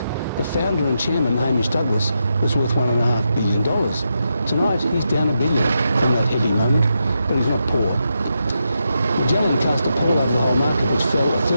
the founder and chairman, Hamish Douglass, was worth $1.5 billion. Tonight, he's down $1 billion from that heady moment, but he's not poor. Magellan cast a pall over the whole market, which fell a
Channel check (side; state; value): both; inverted; correlation -0.85